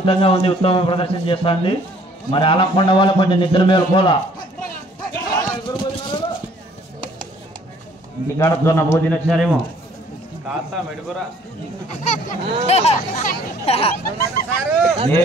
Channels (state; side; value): normal; both; correlation 0.58